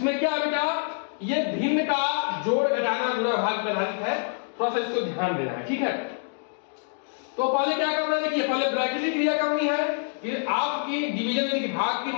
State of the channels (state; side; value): silent; right; 61 dB below the other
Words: क्या है बेटा, ये भिन्न का जोड़ घटाना गुणा भाग पे आधारित है, थोड़ा सा इसको ध्यान देना है। ठीक है, तो पहले क्या करना है, देखिए पहले ब्रैकेट क्रिया करनी है, फिर आपकी डिवीजन यानी कि भाग की,